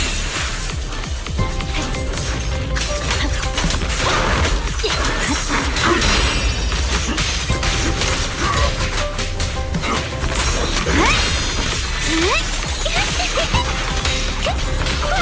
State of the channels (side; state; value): both; identical; correlation 1.00